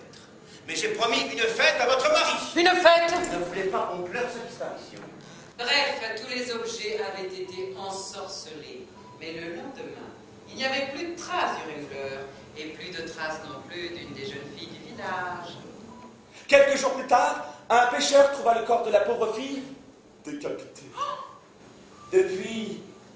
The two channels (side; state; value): both; identical; correlation 1.00